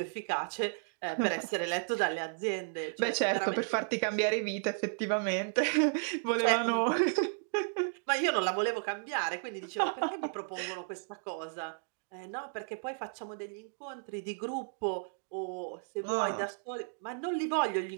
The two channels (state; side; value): silent; left; digital silence